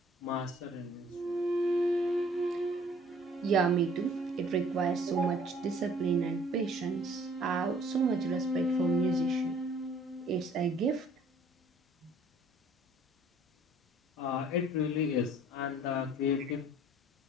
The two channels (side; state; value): both; normal; correlation 0.56